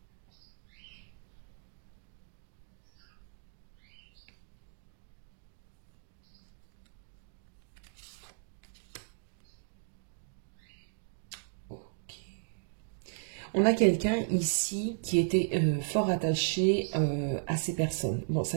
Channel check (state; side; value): silent; left; digital silence